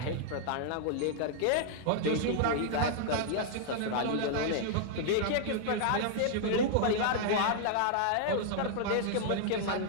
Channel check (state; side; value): different; both; correlation -0.01